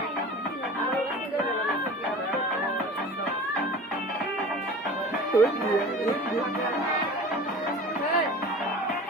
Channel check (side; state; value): both; normal; correlation 0.38